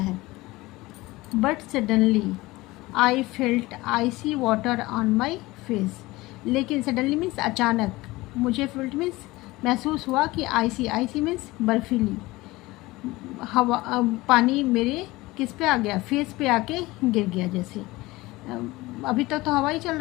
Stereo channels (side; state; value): right; quieter; 20.2 dB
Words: But suddenly I felt icy water on my face, लेकिन सडनली मीन्स अचानक, मुझे फेल्ट मीन्स महसूस हुआ कि आइसी मीन्स बर्फीली हवा, पानी मेरे किस पे आ गया, फेस पे आके गिर गया। जैसे अभी तक तो हवा ही चल